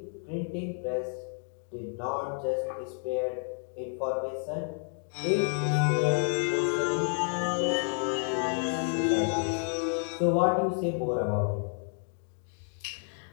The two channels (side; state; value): right; silent; 58 dB below the other